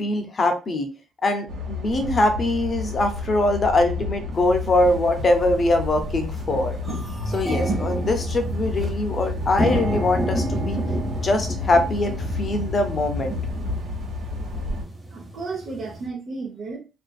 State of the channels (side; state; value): both; normal; correlation 0.75